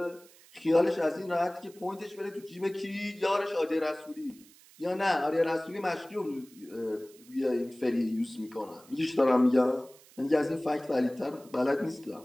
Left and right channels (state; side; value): noise; right; hiss, 25 dB below the sound